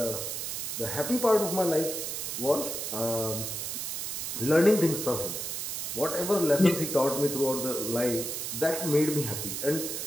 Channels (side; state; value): right; noise; hiss, 4 dB below the sound